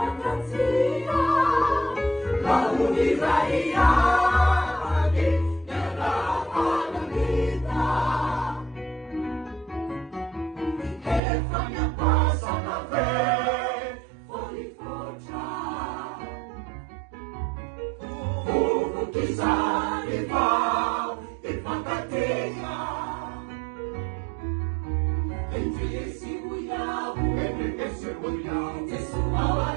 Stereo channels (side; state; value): left; drops out; at 11.2 s